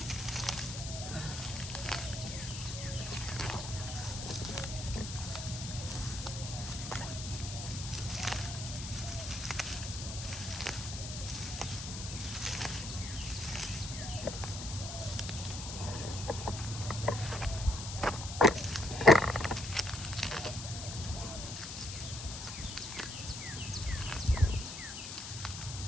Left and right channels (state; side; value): noise; left; hiss, 8 dB below the sound